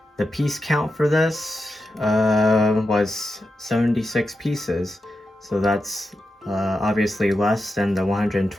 The piece count for this was 76 pieces, so that's obviously less than the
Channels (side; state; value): both; normal; correlation 0.88